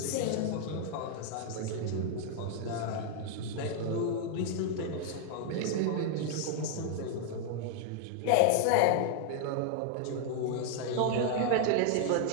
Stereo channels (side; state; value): both; different; correlation -0.01